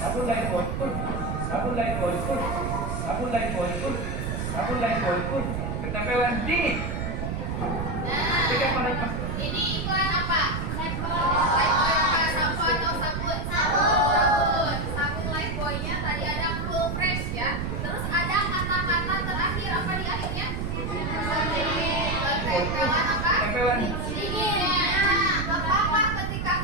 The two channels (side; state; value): right; noise; rumble, 3 dB below the sound